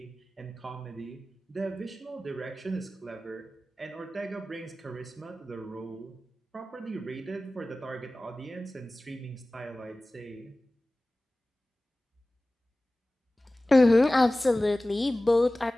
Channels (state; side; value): normal; both; correlation 0.97